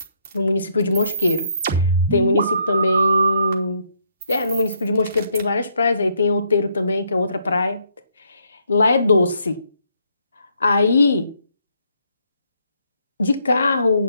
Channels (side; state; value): both; inverted; correlation -0.73